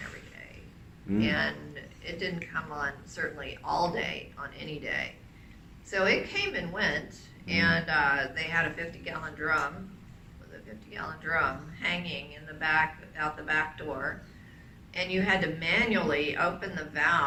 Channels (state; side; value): identical; both; correlation 1.00